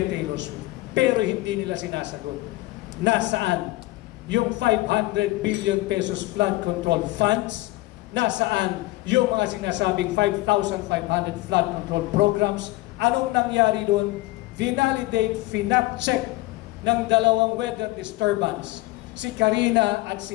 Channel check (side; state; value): right; quieter; 19.4 dB